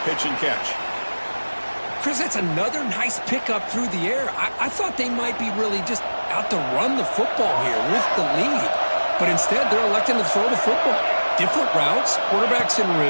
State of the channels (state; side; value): inverted; both; correlation -1.00